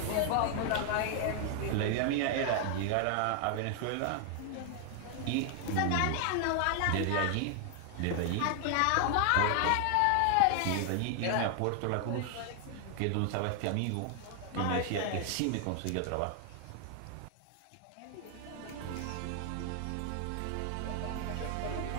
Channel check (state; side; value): different; both; correlation 0.00